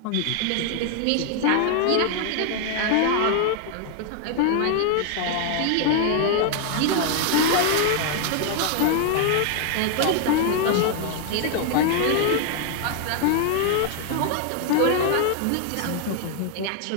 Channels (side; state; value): both; different; correlation 0.00